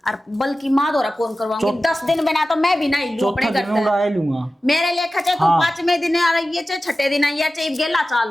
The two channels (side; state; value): both; normal; correlation 0.95